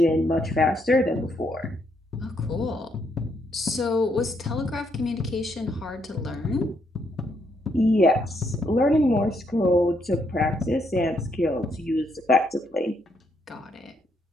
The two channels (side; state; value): both; normal; correlation 0.75